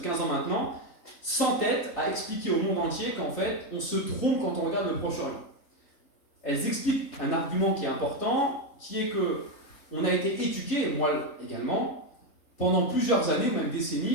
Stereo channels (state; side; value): late; right; 3.9 ms